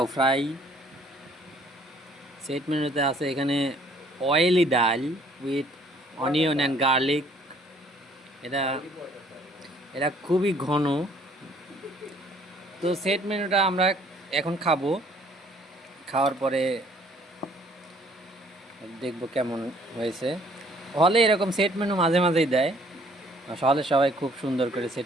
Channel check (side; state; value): both; normal; correlation 0.60